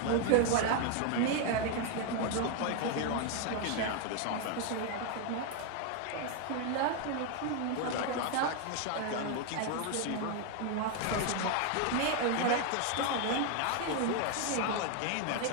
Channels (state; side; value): different; both; correlation 0.01